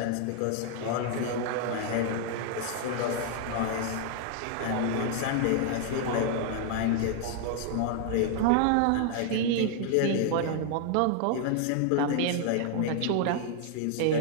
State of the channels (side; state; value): both; different; correlation 0.00